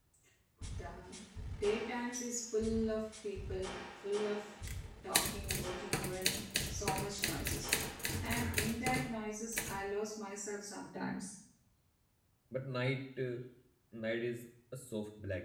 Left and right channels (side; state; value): both; identical; correlation 1.00